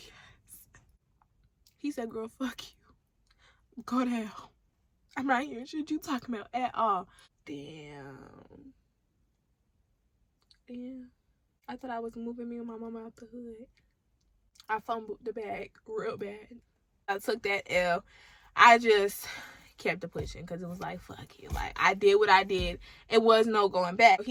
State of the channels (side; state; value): both; identical; correlation 1.00